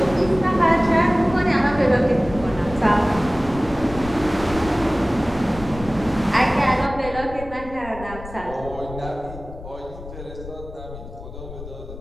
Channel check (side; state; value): left; noise; rumble, 13 dB below the sound